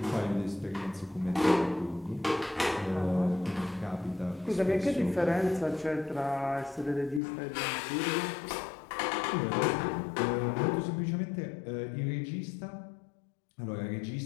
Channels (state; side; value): drops out; right; at 7.2 s